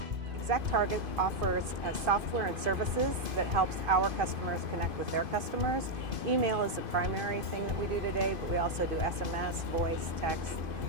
ExactTarget offers software and services that helps our customers connect with their customers. Email is the primary thing that we do today, but we also do SMS, voice, text,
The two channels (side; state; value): left; late; 2.5 ms